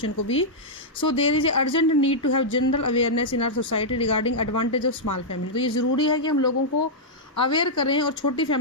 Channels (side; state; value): both; normal; correlation -0.07